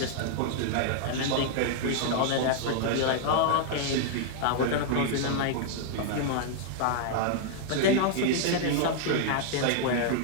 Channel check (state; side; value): different; both; correlation -0.01